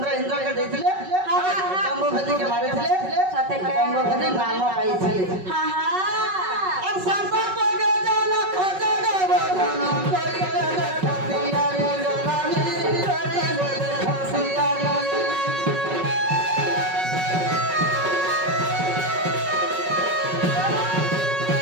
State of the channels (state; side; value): late; left; 5.4 ms